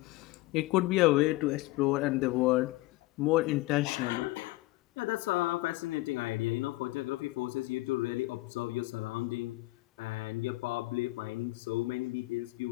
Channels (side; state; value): right; quieter; 20.0 dB